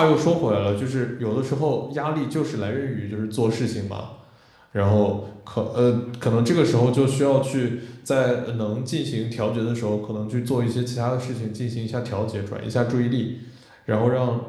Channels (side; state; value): both; identical; correlation 1.00